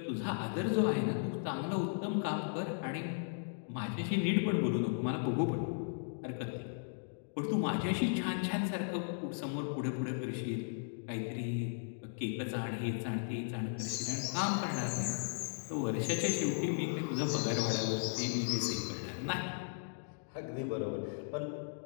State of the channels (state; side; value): silent; right; digital silence